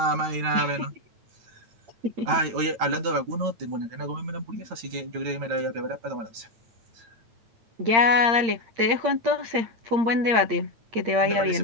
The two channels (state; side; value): late; left; 8.7 ms